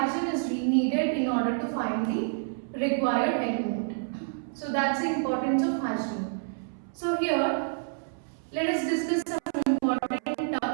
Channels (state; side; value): silent; left; 59 dB below the other